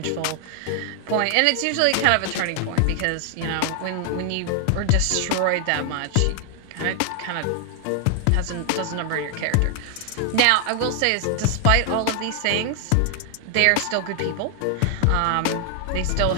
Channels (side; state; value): both; different; correlation 0.00